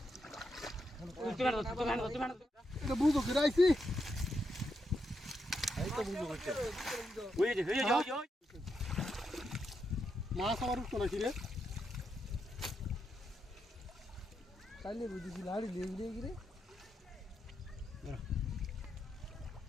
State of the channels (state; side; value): normal; both; correlation 0.83